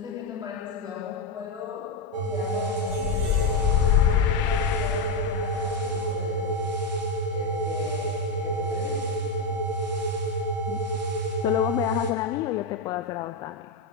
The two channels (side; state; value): right; quieter; 3.2 dB